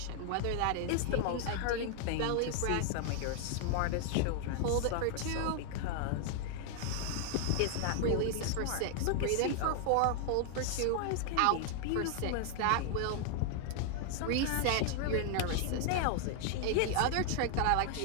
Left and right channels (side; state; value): both; different; correlation 0.00